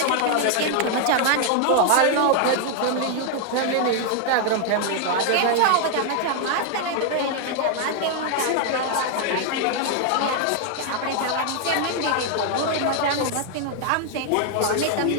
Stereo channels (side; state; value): both; different; correlation 0.00